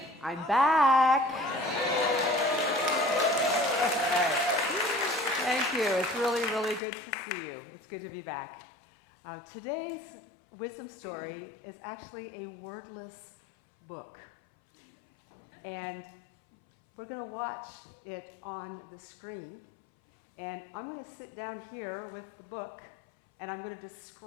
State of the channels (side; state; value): right; drops out; at 6.8 s